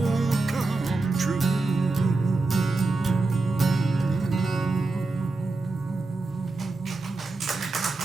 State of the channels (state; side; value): quieter; left; 3.4 dB